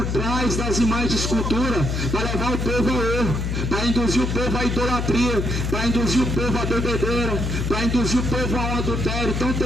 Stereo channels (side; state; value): left; noise; hum, 1 dB below the sound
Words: trás das imagens de escultura para levar o povo ao erro, para induzir o povo à idolatria, para induzir o povo à bebedeira, para induzir o povo a um adultério tão